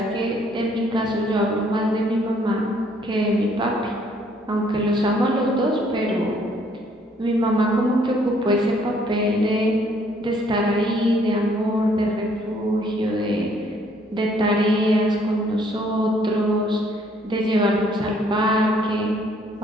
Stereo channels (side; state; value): both; normal; correlation 0.64